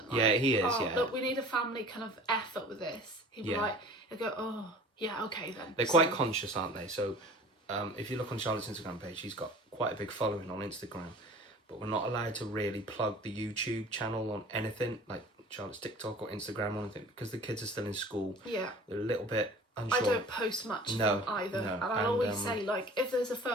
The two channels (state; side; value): normal; both; correlation 0.44